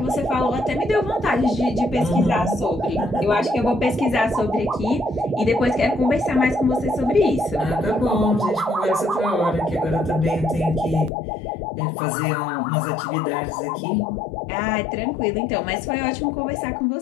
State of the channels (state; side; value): drops out; right; at 11.1 s